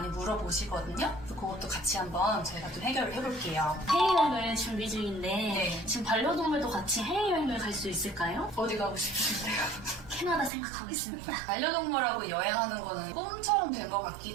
물어보시거든요. 그것도 같이 한번 저희가 좀 해결을 해볼게요. 해외여행을 준비 중인데 네. 지금 반려동물도 같이 해외여행을 갈 수 있을까요? 어디 가고 싶으신데요? 캐나다 생각하고 있습니다. 반려동물하고 여행하는 거는 꿈처럼 된 것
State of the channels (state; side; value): drops out; left; at 10.5 s